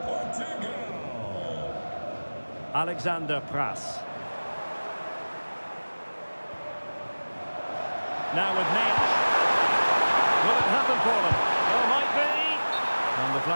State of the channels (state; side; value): inverted; both; correlation -1.00